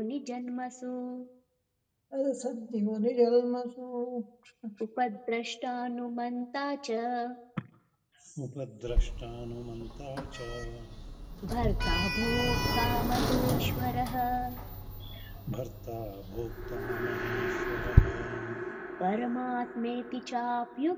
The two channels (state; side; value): identical; both; correlation 1.00